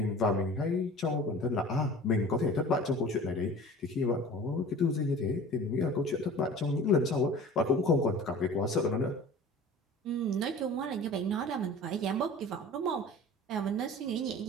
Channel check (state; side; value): normal; both; correlation 0.41